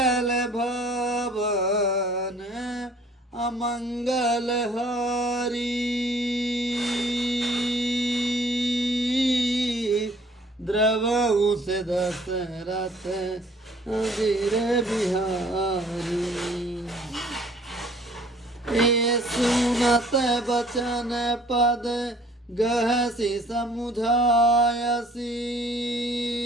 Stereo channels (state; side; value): normal; both; correlation 0.55